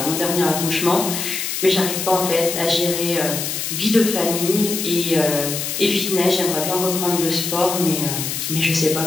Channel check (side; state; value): left; noise; hiss, 3 dB below the sound